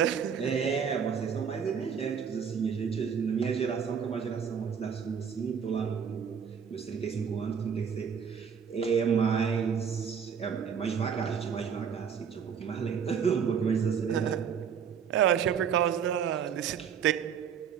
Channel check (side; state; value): left; quieter; 7.2 dB